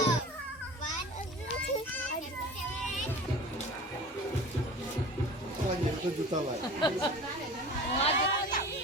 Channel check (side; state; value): both; normal; correlation 0.38